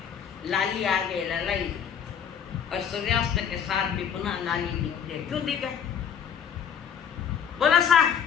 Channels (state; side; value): quieter; right; 8.0 dB